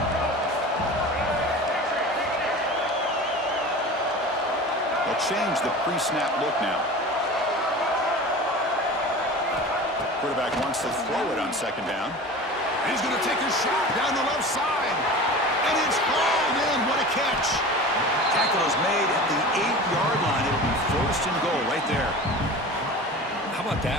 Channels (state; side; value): normal; both; correlation 0.35